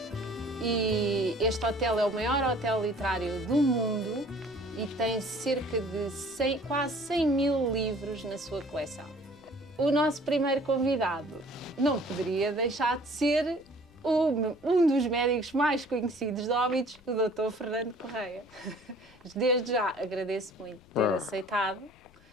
e este hotel é o maior hotel literário do mundo e tem cerca de quase 100 mil livros na sua coleção. O nosso primeiro convidado não poderia deixar de ser um dos médicos mais conhecidos de Óbidos, o Dr. Fernando Correia. Desde já agradeço muito ter aceitado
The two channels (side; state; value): left; noise; rumble, 28 dB below the sound